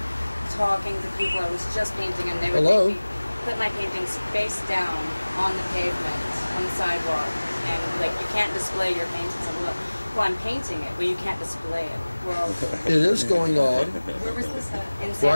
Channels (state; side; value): inverted; both; correlation -1.00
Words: talking to people, I was just painting, and they would Hello? make me put my paintings face down on the pavement, on the sidewalk, and like, you can't display your paintings. Well, I'm painting it, but you can't display it. Well, It is going on where was this at? In Santa